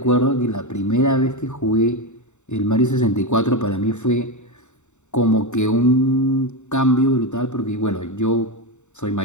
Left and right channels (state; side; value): late; right; 0.84 ms